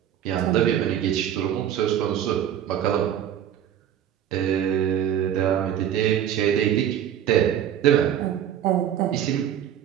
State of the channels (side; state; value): left; quieter; 10.3 dB